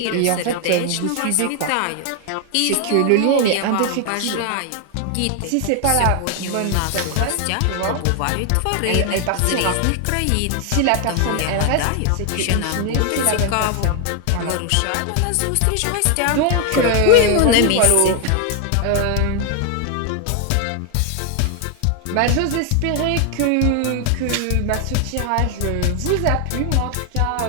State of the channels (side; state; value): both; different; correlation 0.01